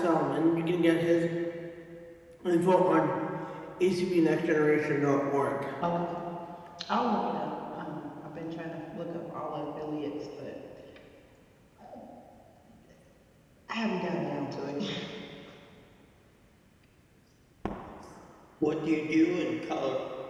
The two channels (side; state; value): both; identical; correlation 1.00